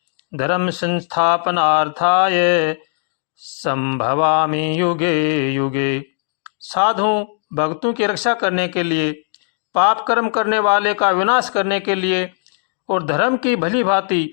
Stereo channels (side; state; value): right; silent; digital silence